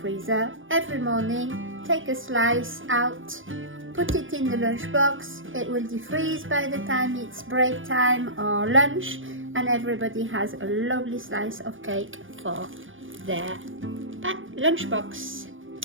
Every morning, take a slice out, put it in the lunchbox. It will defreeze by the time it's break time or lunch, and everybody has a lovely slice of cake for their lunchbox.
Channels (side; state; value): left; late; 0.57 ms